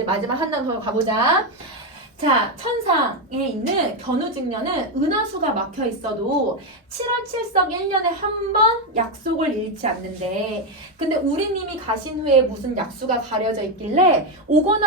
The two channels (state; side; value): normal; both; correlation 0.07